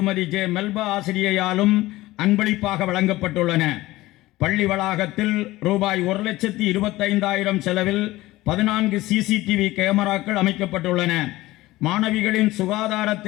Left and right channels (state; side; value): quieter; right; 18.0 dB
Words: ஜே மெல்பா ஆசிரியையாலும் அன்பளிப்பாக வழங்கப்பட்டுள்ளன. பள்ளி வளாகத்தில் ரூபாய் 1,25,000 செலவில் 14 CCTV கேமராக்கள் அமைக்கப்பட்டுள்ளன. மாணவிகளின்